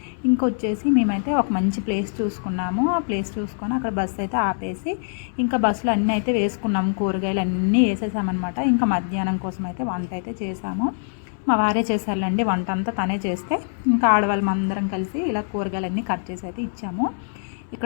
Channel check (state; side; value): silent; right; 63 dB below the other